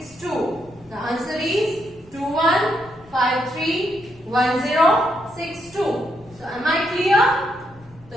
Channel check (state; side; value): noise; left; rumble, 25 dB below the sound